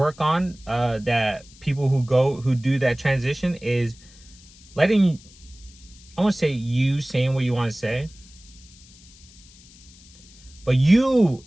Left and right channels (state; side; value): noise; left; hiss, 24 dB below the sound